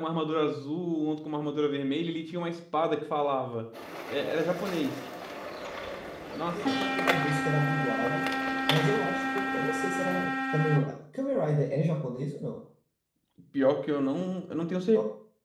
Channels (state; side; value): identical; both; correlation 1.00